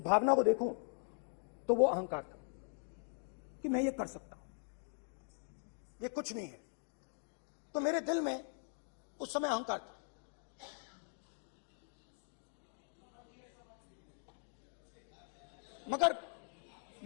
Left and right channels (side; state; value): right; silent; 50 dB below the other